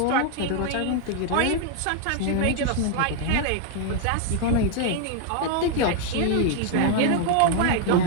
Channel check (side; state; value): both; different; correlation 0.00